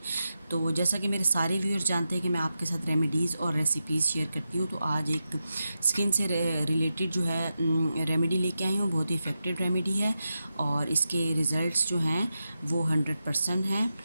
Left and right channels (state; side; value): inverted; both; correlation -0.89